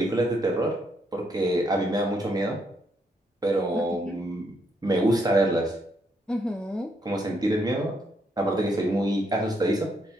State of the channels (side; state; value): both; normal; correlation 0.75